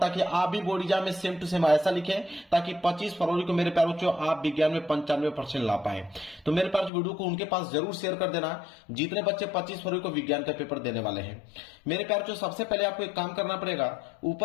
आप भी बोर्ड एग्जाम में सेम टू सेम ऐसा लिखें ताकि 25 फरवरी को मेरे प्यारे बच्चों आप विज्ञान में 95% ला पाए। तो मेरे पास वीडियो को उनके पास जरूर शेयर कर देना जितने बच्चे 25 फरवरी को विज्ञान का पेपर देने वाले हैं। मेरे प्यारे बच्चों, सबसे पहले आपको एक काम करना पड़ेगा,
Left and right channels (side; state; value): right; drops out; at 6.9 s